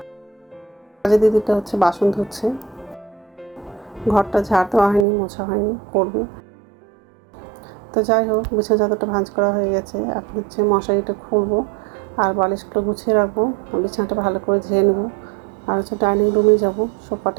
কাজে দিদিটা হচ্ছে বাসন ধুচ্ছে, ঘরটা ঝাড় দেওয়া হয়নি, মোছা হয়নি, করবে। তো যাই হোক, বিছানা চাদরটা ভাঁজ করা হয়ে গেছে। এখন হচ্ছে মশারিটা খুলবো আর বালিশগুলো গুছিয়ে রাখবো, বিছানাটা ভালো করে ঝেড়ে নেবো। আর হচ্ছে ডাইনিং রুমে যাবো,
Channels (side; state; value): left; drops out; at 5.1 s